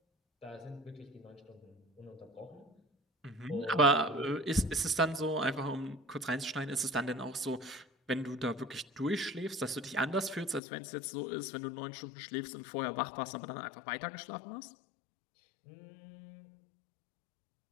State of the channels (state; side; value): drops out; right; at 10.6 s